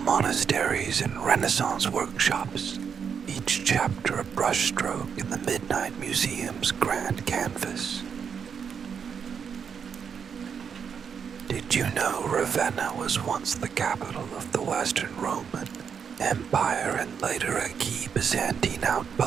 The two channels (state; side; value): quieter; left; 6.9 dB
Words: monasteries and Renaissance workshops, each chapter a brushstroke in the Midnight Museum's grand canvas. Did you know Ravenna was once the capital of the Western Roman Empire and later a key Byzantine